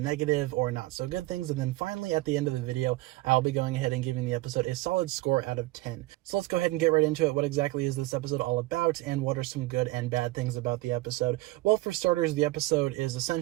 or not so good things, and then finally, at the end of the video, I'll be going ahead and giving the episode a solid score out of 10. So let's go ahead and get right into it. What exactly is this episode all about, and what are some good and bad things about the episode? Well, for starters, the episode is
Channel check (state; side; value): quieter; left; 19.7 dB